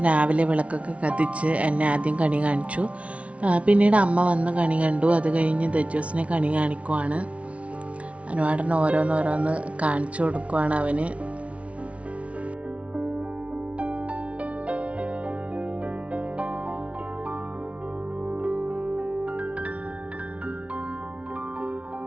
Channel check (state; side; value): late; left; 0.063 ms